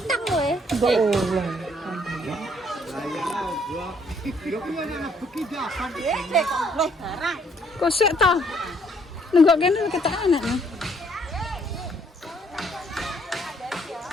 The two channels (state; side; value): normal; both; correlation 0.66